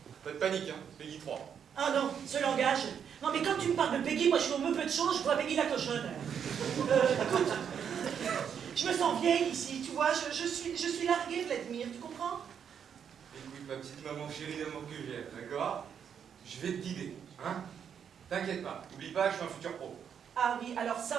Pas de panique, hein, Peggy 3. Ah non, ce langage. Non mais quand tu me parles de Peggy, moi je suis au peu de change, je vois Peggy la cochonne. Écoute, je me sens vieille ici, tu vois, je suis larguée, Vladimir, tu comprends? Écoute, ma petite maman chérie d'amour que j'aime, d'accord? Je vais te guider, hein? T'inquiète pas, n'oublie pas, je suis un futur pro. Ah oui, alors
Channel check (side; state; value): left; quieter; 7.9 dB